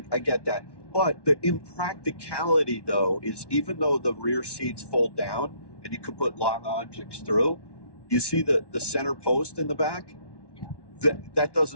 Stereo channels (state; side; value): late; right; 1.1 ms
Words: get that. But the impracticality, though, is even though the rear seats fold down and you could put long objects through, you see the center post in the back? Yeah. That